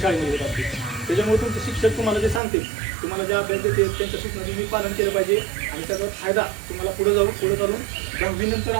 शाळेमध्ये होत असते. त्याच्यामुळे तुमचे शिक्षक तुम्हाला जे सांगते तुम्हाला जे अभ्यास देते त्यांच्या सूचना तुम्ही पालन केलं पाहिजे आणि त्याचा फायदा तुम्हाला पुढे चालून 10वी नंतर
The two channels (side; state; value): left; drops out; at 2.4 s